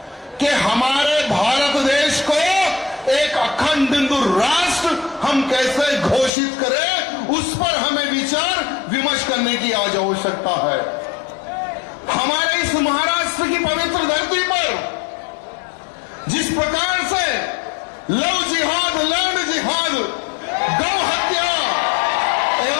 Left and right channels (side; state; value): right; drops out; at 6.3 s